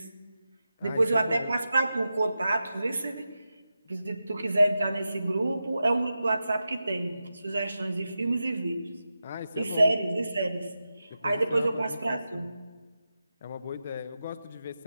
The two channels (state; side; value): inverted; both; correlation -0.91